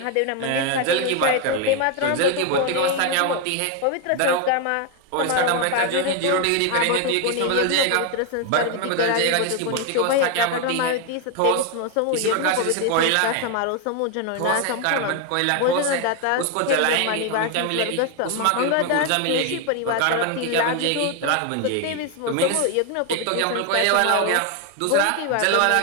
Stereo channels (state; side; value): different; both; correlation 0.01